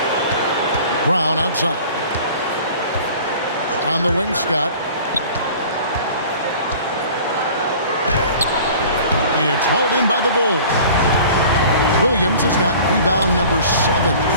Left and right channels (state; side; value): inverted; both; correlation -0.45